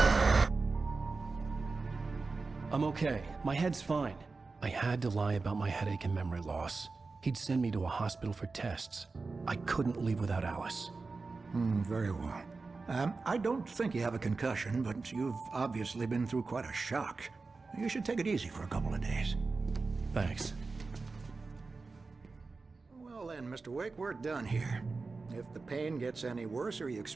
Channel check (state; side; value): quieter; left; 4.0 dB